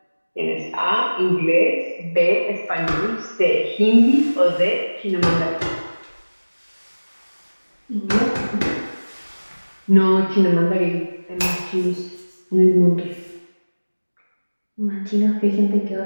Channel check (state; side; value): inverted; both; correlation -1.00